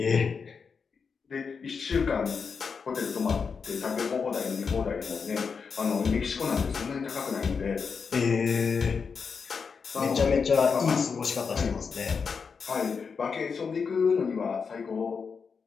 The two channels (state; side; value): quieter; right; 5.6 dB